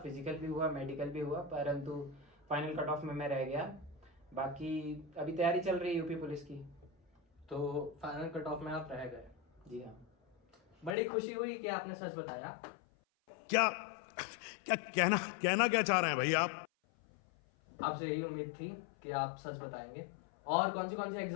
फिजिकल भी हुआ, मेडिकल भी हुआ, परंतु फाइनल कट ऑफ में मैं रह गया। बाकी अभी तैयारी चल रही है यूपी पुलिस की। तो फाइनल कट ऑफ में आप रह गए। जी हाँ। बड़ी खुशी हुई कि आपने सच बताया। क्या क्या कहना क्या चाह रहे हैं भाई आप? आपसे यही उम्मीद थी कि आप सच बताएंगे। और कौन सी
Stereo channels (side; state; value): right; drops out; at 11.0 s